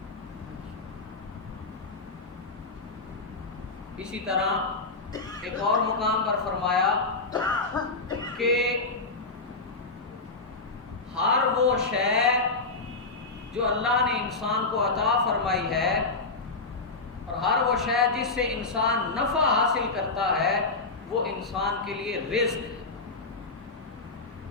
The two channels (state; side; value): quieter; right; 3.8 dB